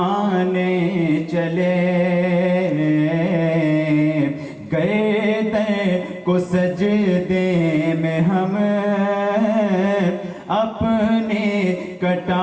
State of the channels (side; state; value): both; identical; correlation 1.00